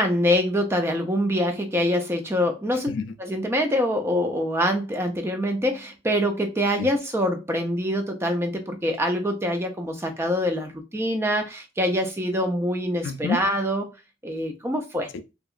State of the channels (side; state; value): both; normal; correlation 0.58